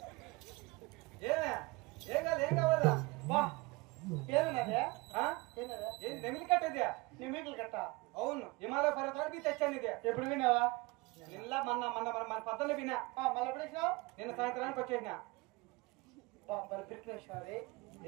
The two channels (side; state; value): left; quieter; 24.3 dB